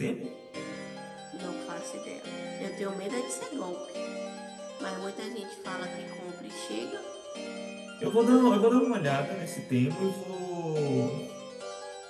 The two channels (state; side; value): identical; both; correlation 1.00